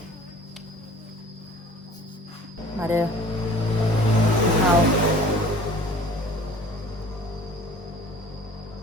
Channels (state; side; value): normal; both; correlation 0.47